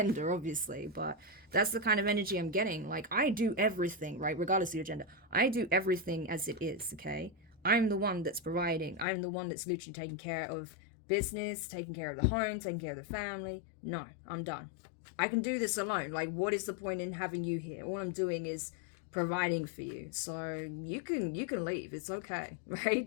obviously, but that's the kind of energy I'm getting. Like, I do everything, right? Regardless of your gender. I do everything as it is, okay? I'm the one that's providing. I'm the one that's literally taking care of business, taking care of the home, taking care of the family. No, I'm done. I can do this alone. Like, what is the point in having you here? All I'm doing is providing for you. So you can leave. It's okay,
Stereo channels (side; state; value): right; drops out; at 9.1 s